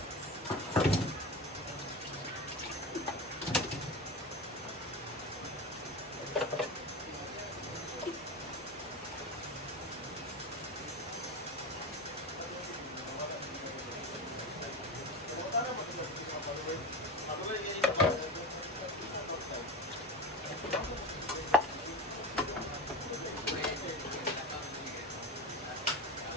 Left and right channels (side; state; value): both; normal; correlation 0.24